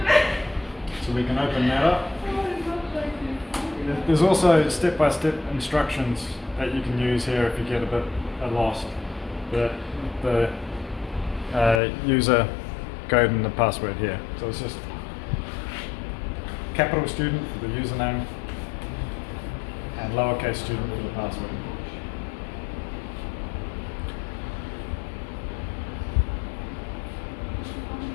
So we can open that up. There's also step-by-step instructions that you can use here if you get a bit lost. The user code and the password here. So it's just capital student for the username and lowercase student for the password.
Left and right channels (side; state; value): right; drops out; at 11.8 s